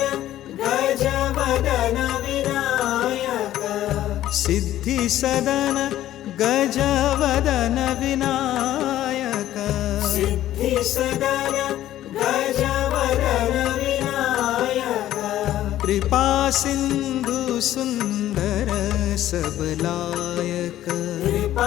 गजवदन विनायक सिद्धि सदन गजवदन विनायक सिद्धि सदन गजवदन विनायक कृपा सिंधु सुंदर सबलायक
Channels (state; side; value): quieter; right; 13.2 dB